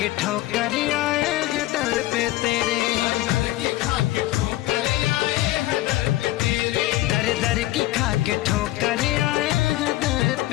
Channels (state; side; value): quieter; right; 17.0 dB